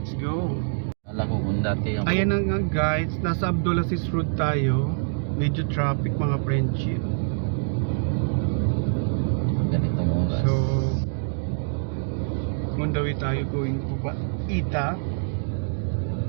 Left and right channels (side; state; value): left; silent; digital silence